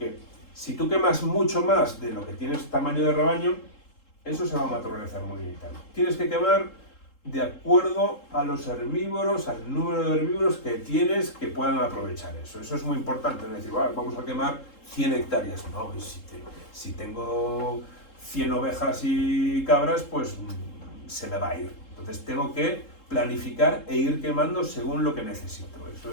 si tú quemas mucho más de lo que tienes tamaño de rebaño, eso se va a materializar muy bien. Tienes que quemar de acuerdo a los herbívoros, al número de herbívoros que tienes que puedan aprovechar eso. Eso es muy importante, no es decir, vamos a quemar 100 hectáreas. No, si tengo 100 ovejas y cabras, pues se me va a ir. Entonces tengo que planificar e ir quemando según lo que necesito.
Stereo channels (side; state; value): right; late; 3.7 ms